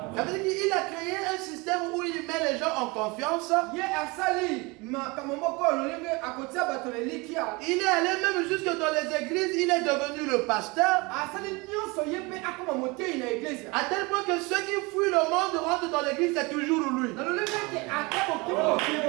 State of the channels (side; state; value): left; quieter; 26.0 dB